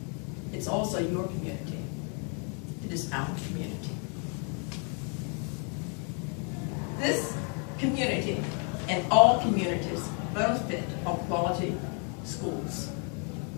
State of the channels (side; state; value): right; quieter; 38.5 dB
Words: It's also your community. It is our community. This community and all communities benefit from quality schools.